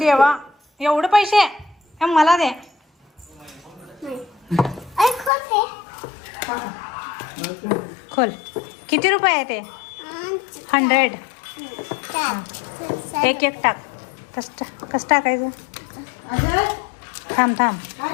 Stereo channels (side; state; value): right; drops out; at 5.3 s